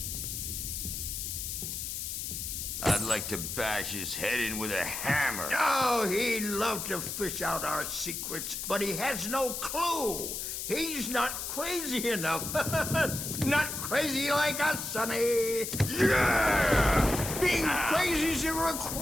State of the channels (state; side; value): noise; left; hiss, 5 dB below the sound